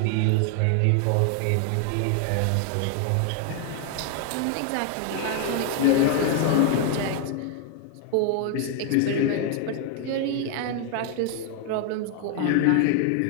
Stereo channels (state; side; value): different; both; correlation 0.00